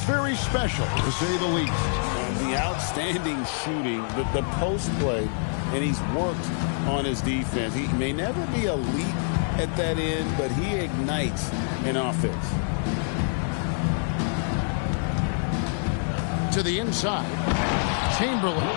very special, to say the least. The outstanding shooting, the post play, and he's worked on his defense. He may never be elite at that end, but he ignites an offense. To the inside, Chamberlain.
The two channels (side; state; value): right; silent; 61 dB below the other